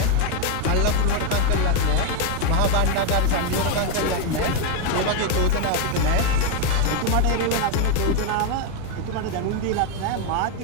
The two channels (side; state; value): both; different; correlation 0.02